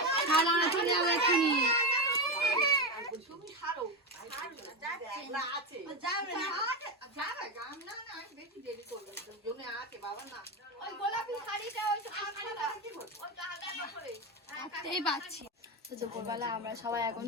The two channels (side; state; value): both; normal; correlation 0.14